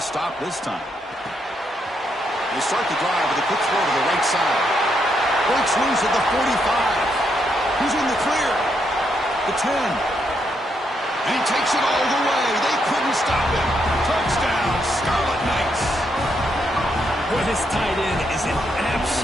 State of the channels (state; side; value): normal; both; correlation 0.78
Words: this time? They start the drive with a quick throw to the right side. Breaks loose at the 45. He's in the clear. The 10. And he takes it all the way. They couldn't stop him. Touchdown, Scarlet Knights. Boy, this tight end is an